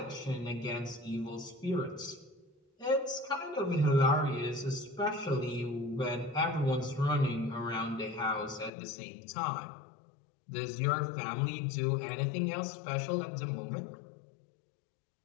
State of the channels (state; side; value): drops out; right; at 8.7 s